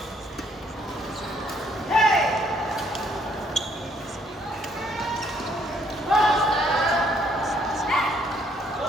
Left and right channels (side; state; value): both; normal; correlation 0.67